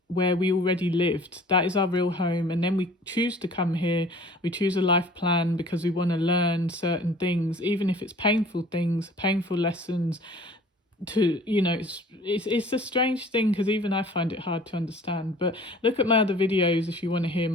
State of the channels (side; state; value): both; normal; correlation 0.49